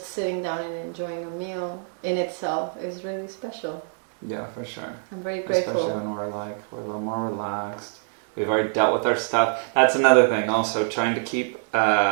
sitting down and enjoying a meal in itself is really special. Yeah, for sure. I'm very grateful. Especially when we're a little more relaxed. We've already dealt with our stuff. That's another thing also, trying to keep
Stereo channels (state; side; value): silent; left; digital silence